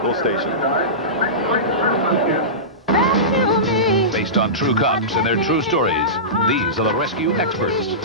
station. Based on true cops and their true stories, these are the Rescue Experts.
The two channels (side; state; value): both; normal; correlation -0.19